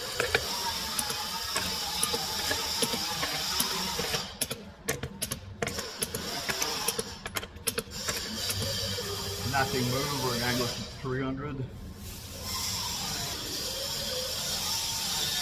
Nothing moved. We're going to go to 300.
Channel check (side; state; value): both; identical; correlation 1.00